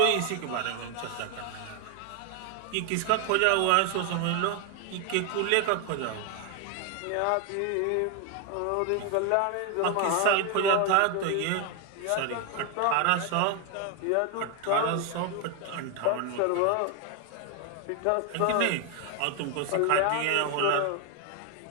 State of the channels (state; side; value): different; both; correlation 0.01